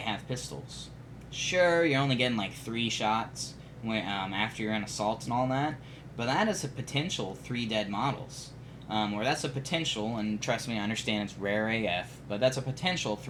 pistols. Sure, you're only getting like 3 shots after you're in assaults and all that, but that is a potential 3 dead models. Or that's a potential, and trust me, I understand it's rare AF, but that's a potential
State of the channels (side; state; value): both; identical; correlation 1.00